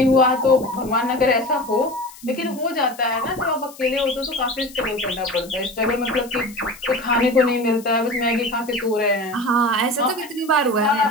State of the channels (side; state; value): left; noise; hiss, 20 dB below the sound